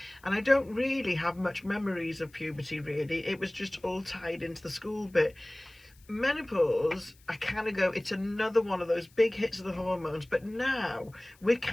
And I don't really have much memories of puberty, really. It was just all tied into the school bit. Menopause, I kind of go, it's another one of those big hits of the hormones, but now we're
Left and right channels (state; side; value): noise; left; hiss, 29 dB below the sound